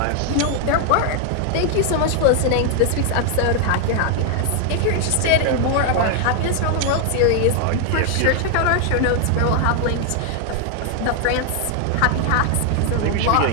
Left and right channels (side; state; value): both; different; correlation 0.00